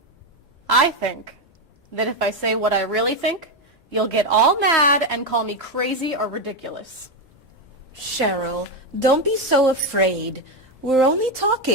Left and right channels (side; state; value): both; normal; correlation 0.09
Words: I think that if I say what I really think, you'll get all mad and call me crazy or ridiculous. Cheryl, don't be so afraid. We're only